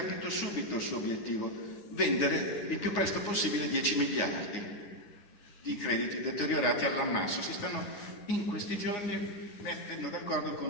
subito il suo obiettivo: vendere il più presto possibile 10 miliardi di crediti deteriorati all'ammasso. Si stanno in questi giorni mettendo d'accordo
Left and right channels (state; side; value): late; right; 9.8 ms